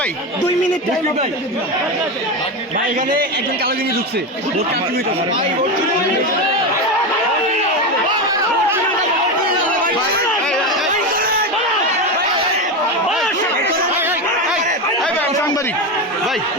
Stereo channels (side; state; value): both; normal; correlation 0.16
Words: ভাই 2 মিনিট টাইম ভাই এখানে একজন কালো গেঞ্জি ঢুকছে ভোট কাটতে হইতাছে সাংবাদিক ভাই